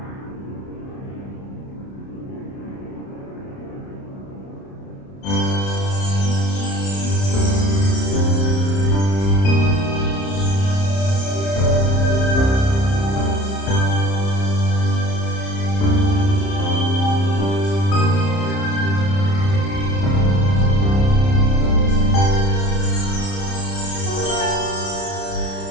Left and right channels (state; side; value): late; right; 30 ms